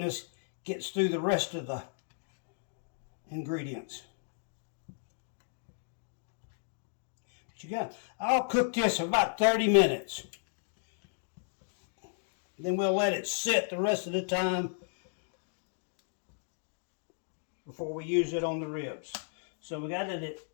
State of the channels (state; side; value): silent; right; digital silence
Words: gets through the rest of the ingredients. But I'll cook this for about 30 minutes. Then we'll let it sit the rest of the time before we use it on the ribs. So we got it at